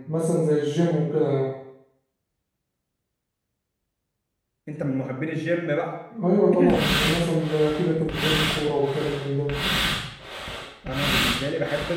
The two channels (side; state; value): both; identical; correlation 1.00